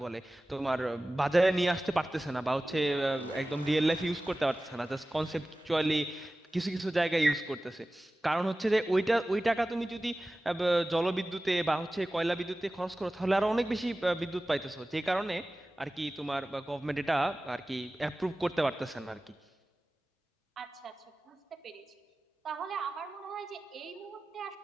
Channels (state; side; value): normal; both; correlation 0.96